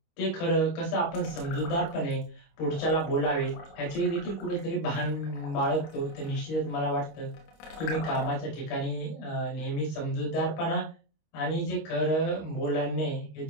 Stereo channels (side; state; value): right; late; 25 ms